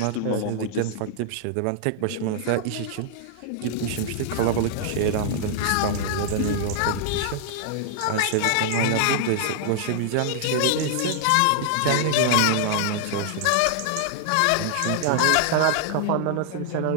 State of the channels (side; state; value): both; different; correlation -0.01